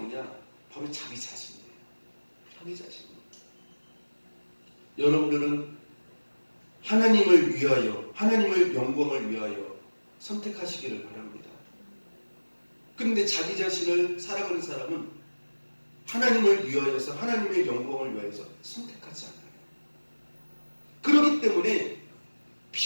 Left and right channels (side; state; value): both; inverted; correlation -1.00